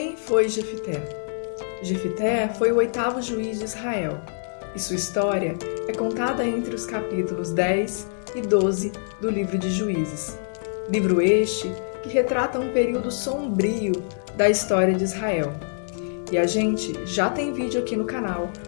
foi Jefité? Jefité foi o 8º juiz de Israel, e sua história é contada entre os capítulos 10 e 12 do livro de Juízes. Livro este que retrata um período sombrio da história de Israel. E a gente já tem vídeo aqui no canal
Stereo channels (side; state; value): right; silent; digital silence